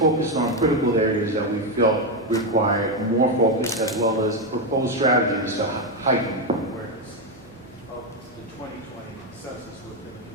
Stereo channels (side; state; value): both; normal; correlation 0.06